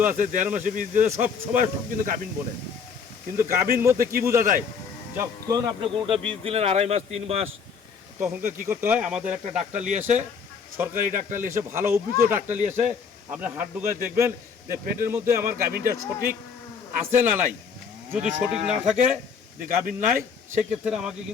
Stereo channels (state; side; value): quieter; right; 6.0 dB